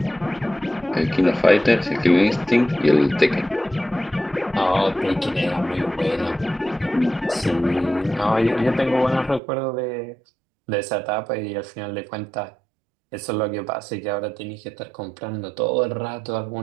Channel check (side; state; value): left; drops out; at 9.4 s